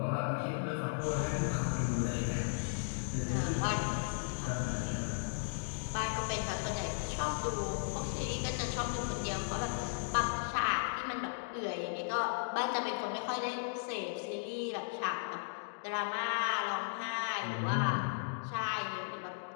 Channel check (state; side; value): silent; right; digital silence